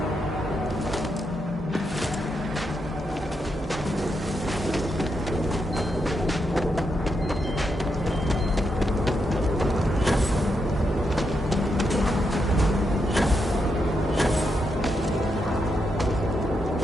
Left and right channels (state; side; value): normal; both; correlation 0.82